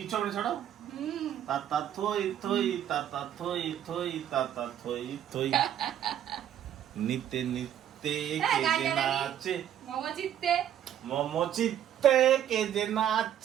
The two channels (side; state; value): left; quieter; 10.5 dB